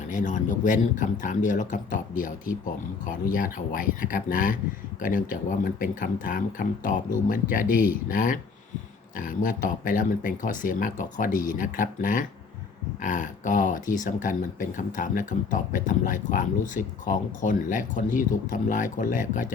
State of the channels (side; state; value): right; quieter; 5.1 dB